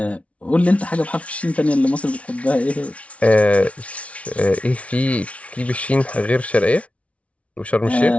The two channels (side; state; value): right; late; 0.064 ms